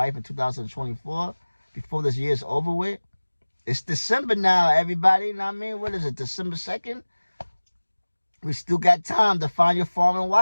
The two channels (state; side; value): inverted; both; correlation -1.00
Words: in 2024, before this year's over with. It's December now, everybody, you know what I mean? What is it, December 2nd? We still got time to find your foreign